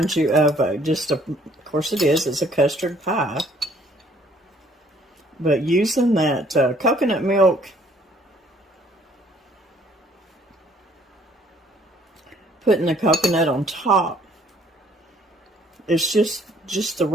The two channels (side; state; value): both; normal; correlation 0.61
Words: you of of course it is. It's a custard pie. But using that coconut milk, putting the coconut on top, it's just the